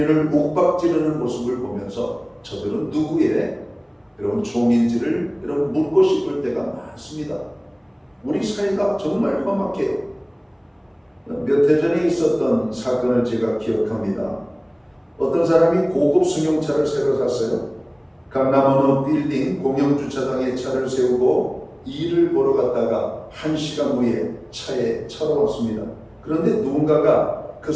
윽박지르는 모습을 보면서 저들은 누구의 여러분 종인지를 여러분 묻고 싶을 때가 많습니다. 우리 사회가 정말 험악해요. 몇 해 전에 있었던 사건을 제가 기억합니다. 어떤 사람이 고급 승용차를 새로 샀어요. 강남 어느 빌딩 공영주차장에 차를 세우고 일을 보러 갔다가 1시간 후에 차에 차로 왔습니다. 그런데 누군가가 그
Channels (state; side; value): identical; both; correlation 1.00